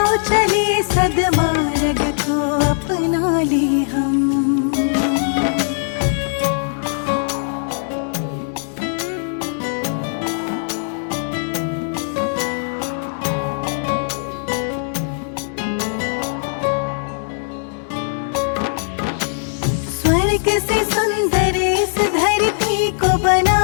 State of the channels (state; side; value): silent; right; digital silence